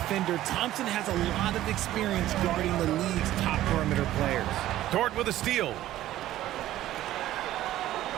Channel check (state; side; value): quieter; left; 14.0 dB